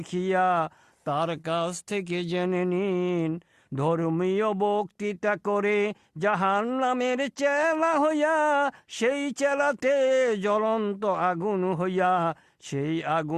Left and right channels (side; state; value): both; identical; correlation 1.00